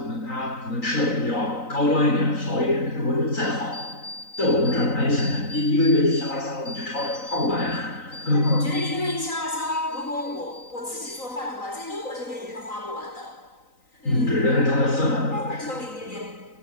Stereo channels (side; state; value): right; late; 3.9 ms